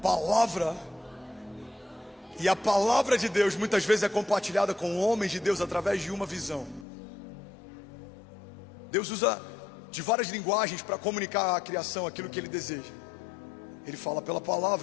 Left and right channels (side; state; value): right; drops out; at 6.9 s